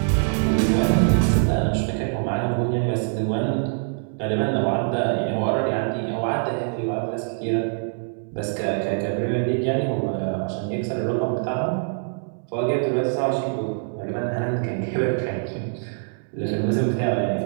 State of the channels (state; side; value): silent; left; 63 dB below the other